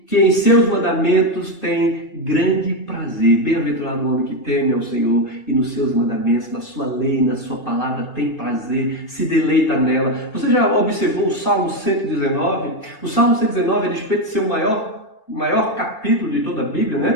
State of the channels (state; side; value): late; right; 2.6 ms